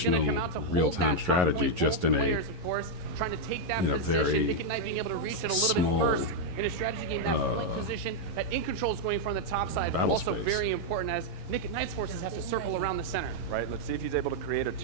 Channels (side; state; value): left; late; 11 ms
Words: going to traditional come out to hold real-time that top strategy, point. just Both in a players, of course, trying to take that in a position. very Nick at Night being able to reach it a little small, bit first in a strategy game. That flank position that In Control is going from the top side, but battle also space. very important as Nick at Night's forces have to circle around the center. Right, let's see if he's able to create a